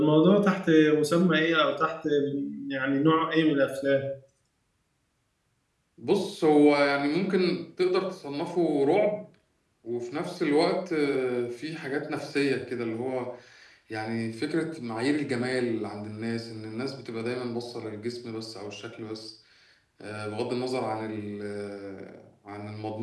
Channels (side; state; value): both; identical; correlation 1.00